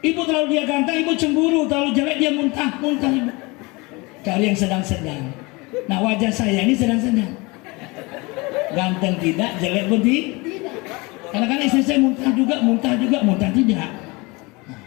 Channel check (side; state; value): right; quieter; 25.5 dB